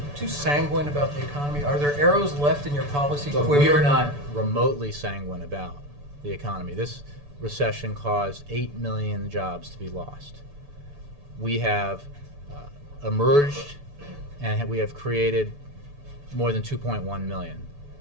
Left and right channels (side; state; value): left; late; 6.9 ms